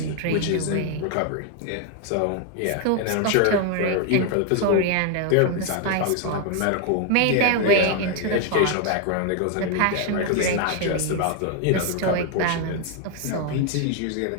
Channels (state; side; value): different; both; correlation 0.00